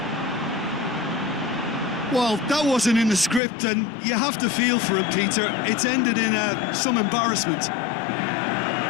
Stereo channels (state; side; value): drops out; right; at 3.4 s